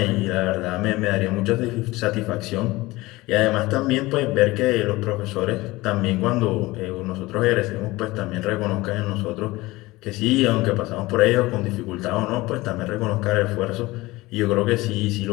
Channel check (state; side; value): quieter; right; 20.2 dB